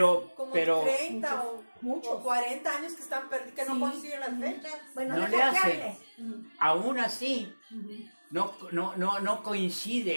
Como pero 30 muchos. o 40 años que están perdidos, que no Sí. coinciden las fechas. Bueno, no deja le que hace. hable. aún así no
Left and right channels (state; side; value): inverted; both; correlation -1.00